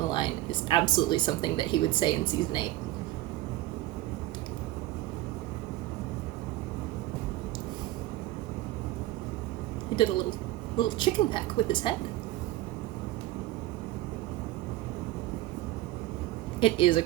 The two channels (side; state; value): left; quieter; 16.1 dB